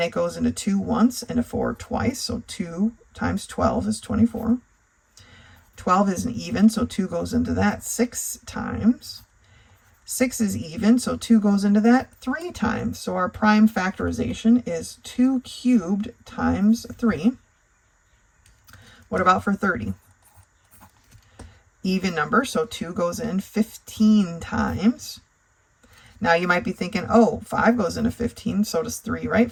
it goes into 2 once and a 4 twice. So 2 times 12 is 24. 12 is an even, so 2 goes into that 6 times. 6 is even, so 2 goes into that 3 times. So our prime factorization is 2 cubed times 3. What about for 30? Even number, so 2 goes in 15 times. Now you might be thinking, oh, 5 goes into 15, so does 3, right?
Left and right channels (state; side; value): identical; both; correlation 1.00